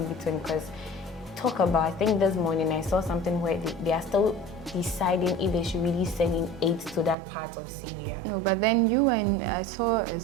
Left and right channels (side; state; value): left; drops out; at 7.2 s